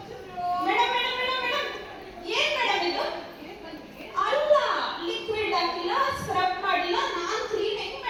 Madam madam madam madam ಏನ್ madam ಇದು? ಅಲ್ಲ, liquid ಹಾಕಿಲ್ಲ, scrub ಮಾಡಿಲ್ಲ, ನಾನ್ clean ಹೆಂಗ್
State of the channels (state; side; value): identical; both; correlation 1.00